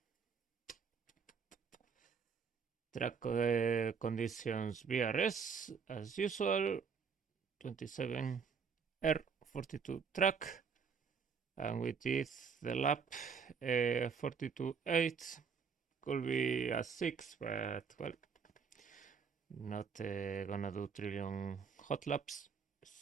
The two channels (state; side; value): quieter; left; 6.0 dB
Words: Track conditions BRS as usual, 27 R42 track, and we did the lap 42.8. Could be a 6, but well, not gonna do trillion hot laps.